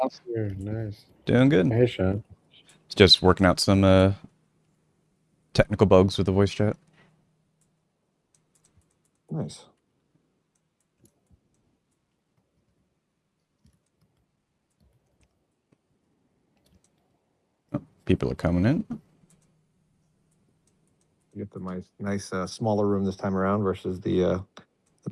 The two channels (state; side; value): identical; both; correlation 1.00